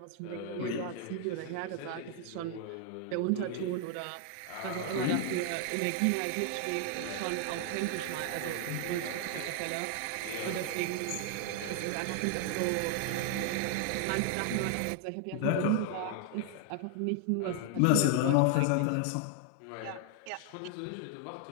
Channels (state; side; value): different; both; correlation 0.00